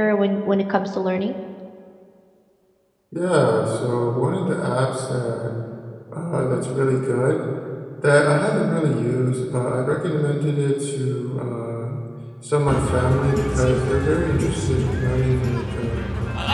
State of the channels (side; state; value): both; identical; correlation 1.00